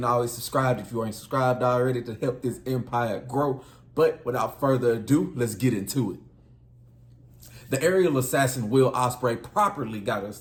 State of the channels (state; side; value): identical; both; correlation 1.00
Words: always subscribe if you ain't subscribed already to help this empire grow. But without further ado, let's get into it. The aerial assassin Will Ospreay properly got us